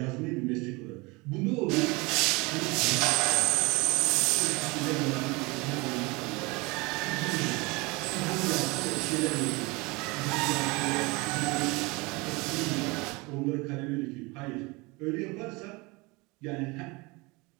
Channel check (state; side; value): quieter; left; 25.5 dB